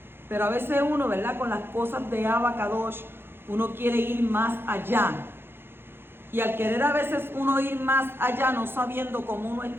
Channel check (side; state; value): left; late; 0.11 ms